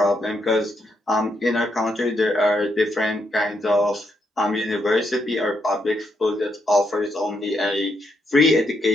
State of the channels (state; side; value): normal; both; correlation 0.78